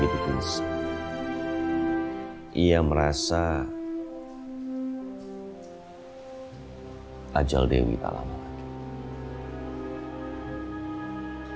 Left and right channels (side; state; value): both; identical; correlation 1.00